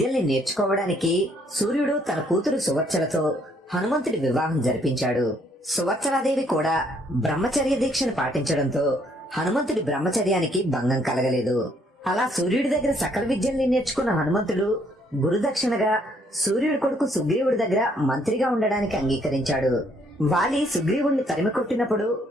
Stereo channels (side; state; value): both; normal; correlation 0.67